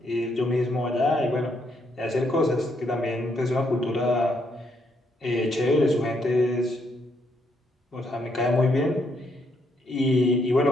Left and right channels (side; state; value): both; normal; correlation 0.74